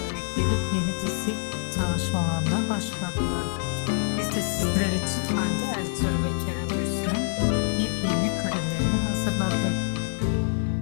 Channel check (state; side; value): silent; right; digital silence